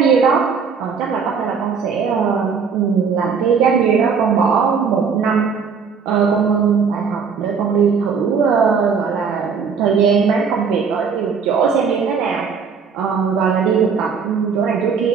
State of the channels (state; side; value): quieter; left; 5.9 dB